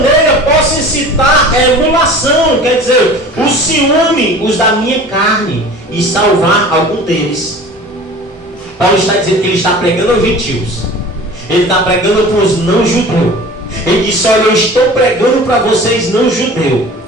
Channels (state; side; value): normal; both; correlation 0.41